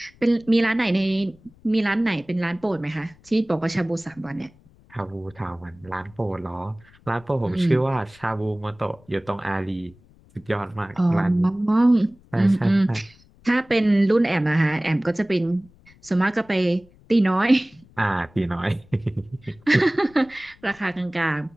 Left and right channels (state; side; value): noise; left; rumble, 27 dB below the sound